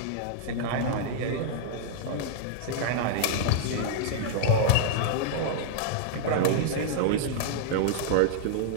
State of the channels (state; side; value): different; both; correlation -0.01